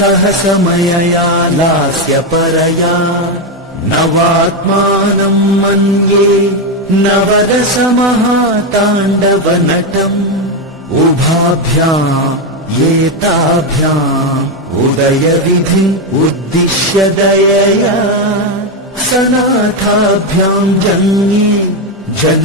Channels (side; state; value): both; normal; correlation 0.07